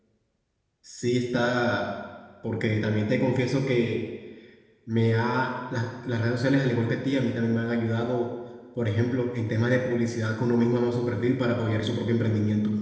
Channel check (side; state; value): both; identical; correlation 1.00